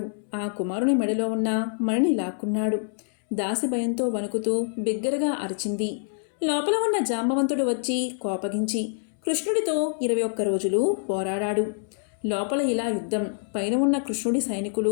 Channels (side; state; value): right; silent; digital silence